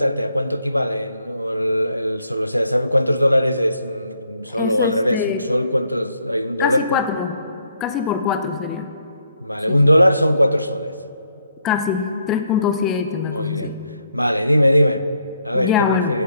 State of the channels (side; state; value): both; inverted; correlation -0.72